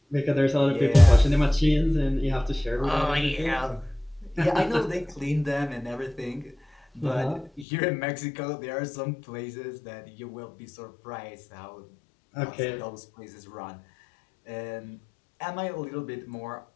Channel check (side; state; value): right; drops out; at 7.7 s